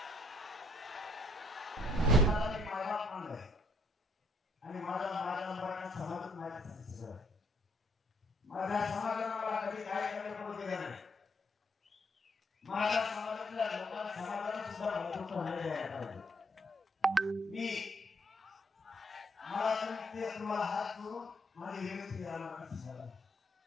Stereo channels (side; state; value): both; normal; correlation 0.68